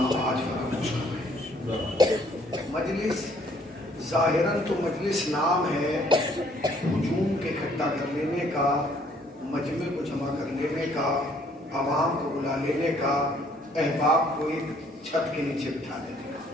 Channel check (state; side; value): normal; both; correlation 0.63